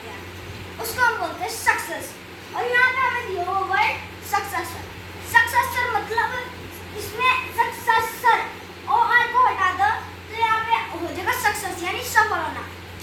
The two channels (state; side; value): identical; both; correlation 1.00